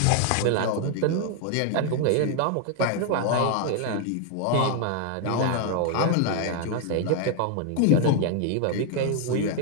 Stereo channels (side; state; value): both; different; correlation 0.00